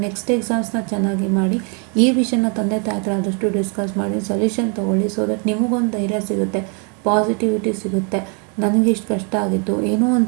ನೆಕ್ಸ್ಟ್ ಎಕ್ಸಾಮ್ಸ್ನ ಚೆನ್ನಾಗಿ ಮಾಡಿ. ಈ ವಿಷಯನ ತಂದೆ ತಾಯಿ ಹತ್ರ ಆದಷ್ಟು ಡಿಸ್ಕಸ್ ಮಾಡಿ ಸೊಲ್ಯೂಷನ್ ತೊಗೊಳ್ಳಿ. ಸೊ ದಟ್ ನಿಮಗೊಂದು ಧೈರ್ಯ ಸಿಗುತ್ತೆ, ಪಾಸಿಟಿವಿಟಿ ಸಿಗುತ್ತೆ. ನನಗಿಷ್ಟು ಕಷ್ಟ ಆಗಿತ್ತು, ಏನೋ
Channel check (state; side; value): quieter; left; 37.3 dB